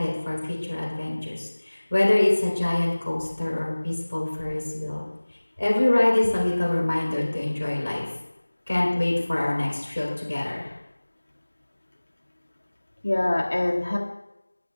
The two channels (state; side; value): inverted; both; correlation -1.00